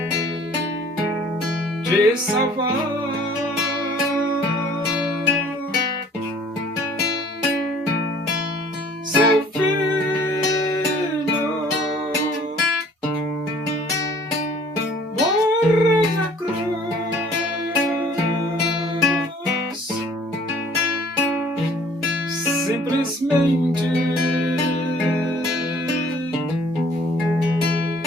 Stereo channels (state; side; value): normal; both; correlation 0.54